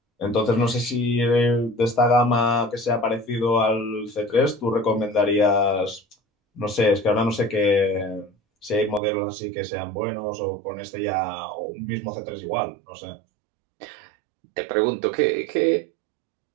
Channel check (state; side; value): drops out; left; at 9.0 s